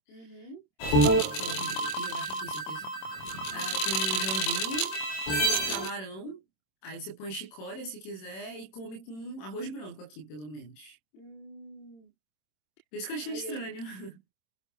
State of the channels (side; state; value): right; late; 26 ms